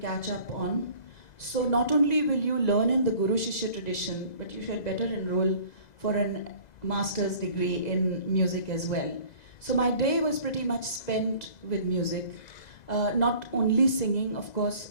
up on. So not only will you learn in the Guru Shishya tradition, but you should better enroll for a master's degree in music as well. So my day was pretty much spent with music. Not only singing, of course,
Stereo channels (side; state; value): right; late; 2.0 ms